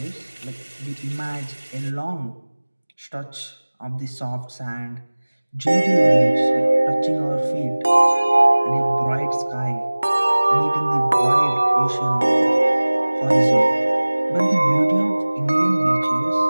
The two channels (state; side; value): inverted; both; correlation -1.00